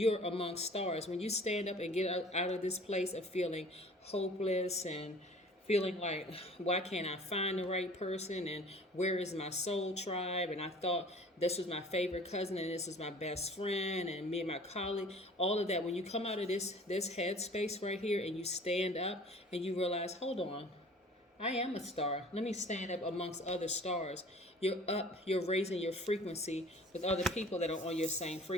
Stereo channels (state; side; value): normal; both; correlation 0.48